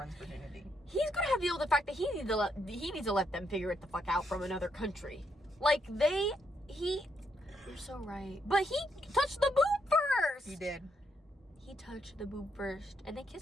virginity. He's gonna have to deal with the fact that he needs to let them figure it the fuck out from another country. Like, you're so right. But he touched the boob first! He did. He touched the boob first, and they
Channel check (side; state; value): both; normal; correlation 0.77